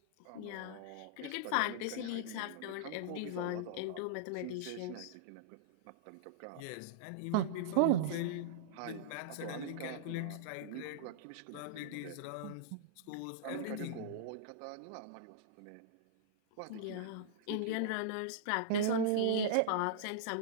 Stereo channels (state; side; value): different; both; correlation -0.02